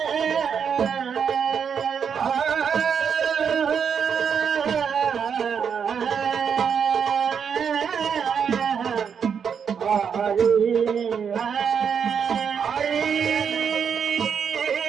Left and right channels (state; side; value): quieter; left; 7.0 dB